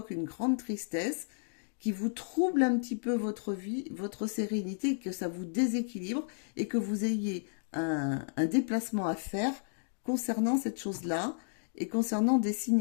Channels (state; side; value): silent; right; digital silence